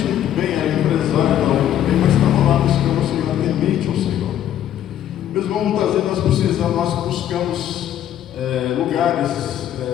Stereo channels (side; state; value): right; quieter; 11.0 dB